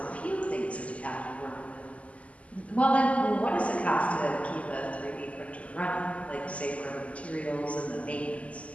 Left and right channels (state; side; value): late; right; 0.066 ms